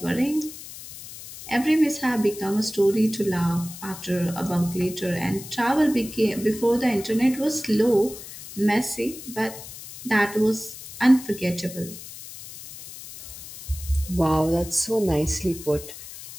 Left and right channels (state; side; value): noise; left; hiss, 14 dB below the sound